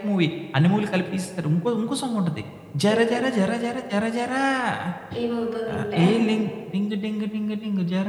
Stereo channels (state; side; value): identical; both; correlation 1.00